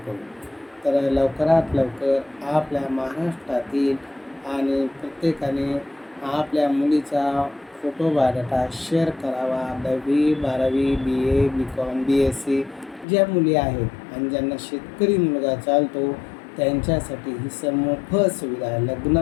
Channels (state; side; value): drops out; right; at 13.1 s